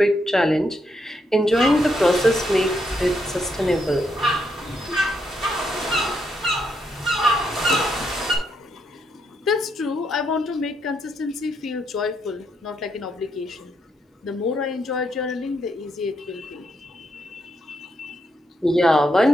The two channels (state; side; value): normal; both; correlation 0.78